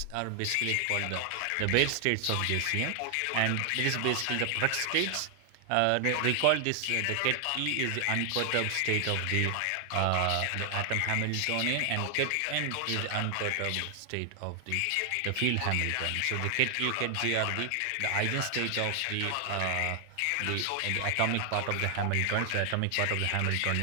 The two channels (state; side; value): different; both; correlation 0.00